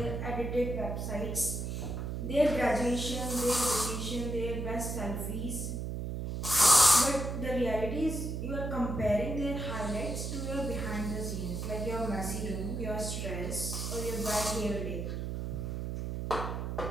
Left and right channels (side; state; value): right; noise; hum, 3 dB below the sound